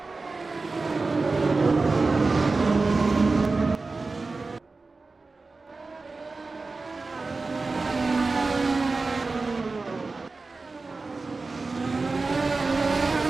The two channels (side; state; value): left; quieter; 3.8 dB